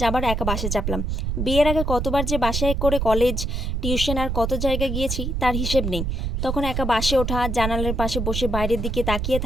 আবার একা বাসে চাপলাম। বিয়ের আগে কতবার যে বাসায় করে কলেজ, টিউশন আর কত জায়গায় গিয়েছি তার হিসেব নেই। তখন একা বাসে ওঠা, জানালার পাশে বসে বাইরের দিকে তাকিয়ে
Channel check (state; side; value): noise; right; rumble, 1 dB below the sound